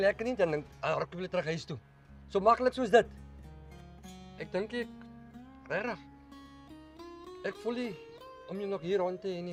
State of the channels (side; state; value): both; identical; correlation 1.00